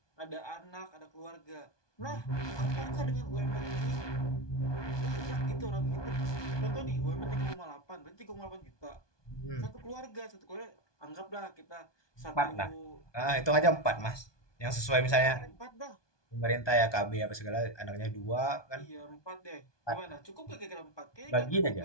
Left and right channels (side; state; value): right; late; 1.2 ms